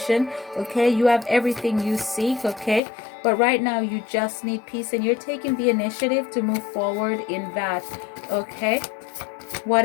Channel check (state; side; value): drops out; right; at 2.8 s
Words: Okay, you have everything you seek. Okay, but right now you just need peace, and you're taking the initiative to move forward in that. Okay, what